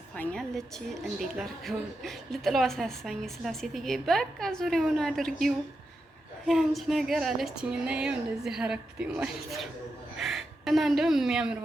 እንዴት ላድርገው ልጥለው አሳሳኝ ስላሴትዬ በቃ ዙሪያውን አድርጊው ያንቺ ነገር አለችኝ እና ይኸው እንደዚህ አረኩት ማለት ነው። እና እንደውም የሚያምር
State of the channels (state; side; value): normal; both; correlation 0.87